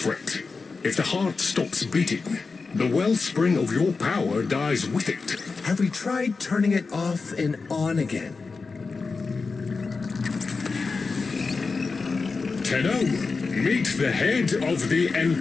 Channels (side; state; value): right; quieter; 4.4 dB